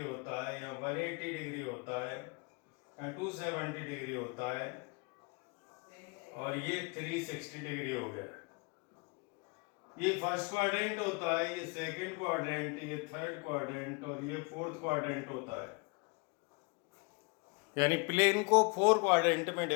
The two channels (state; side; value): quieter; right; 30.7 dB